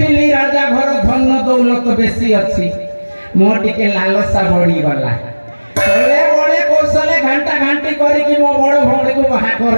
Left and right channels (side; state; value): both; inverted; correlation -1.00